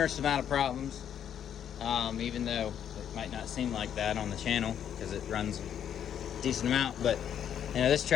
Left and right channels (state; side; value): quieter; right; 9.3 dB